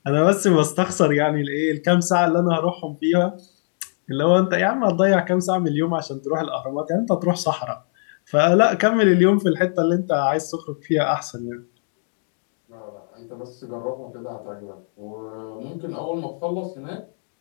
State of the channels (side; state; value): right; silent; digital silence